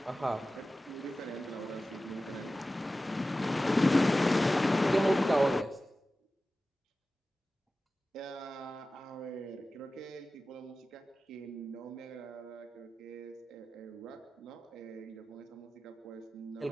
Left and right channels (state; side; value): normal; both; correlation 0.95